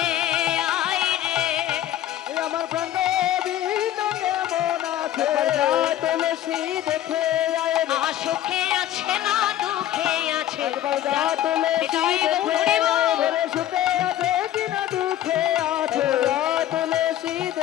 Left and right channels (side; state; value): right; quieter; 12.5 dB